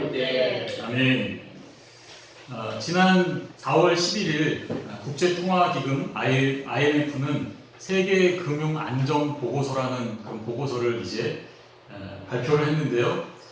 때. 아멘. 지난 4월 11일 국제통화기금 IMF는 세계 금융 안정 보고서라는 그런 보고서를 이제 발표를 했는데요.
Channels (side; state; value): both; identical; correlation 1.00